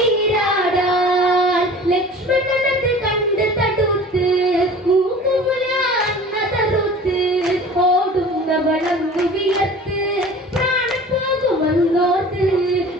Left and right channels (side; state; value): both; normal; correlation 0.42